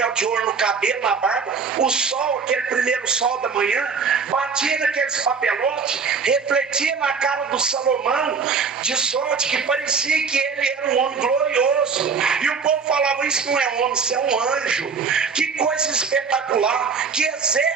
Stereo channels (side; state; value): left; quieter; 5.5 dB